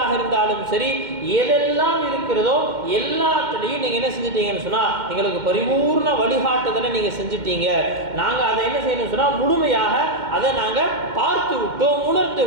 இருந்தாலும் சரி, எதெல்லாம் இருக்கிறதோ எல்லாத்துலேயும் நீங்கள் என்ன செஞ்சிட்டீங்கன்னு சொன்னால் எங்களுக்கு பரிபூர்ண வழிகாட்டுதலை நீங்கள் செஞ்சிட்டீங்க. நாங்கள் அதை என்ன செய்யணும்னு சொன்னால் முழுமையாக அதை நாங்கள் பார்த்து விட்டோம், உணர்ந்து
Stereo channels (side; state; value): left; late; 2.1 ms